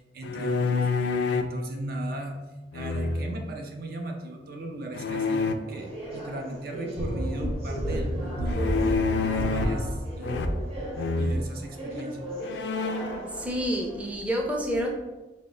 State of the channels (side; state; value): both; normal; correlation 0.60